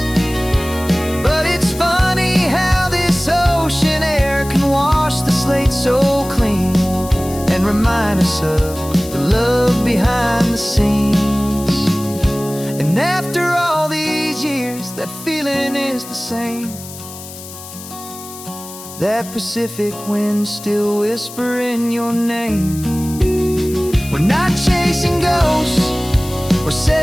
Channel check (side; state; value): left; noise; hiss, 14 dB below the sound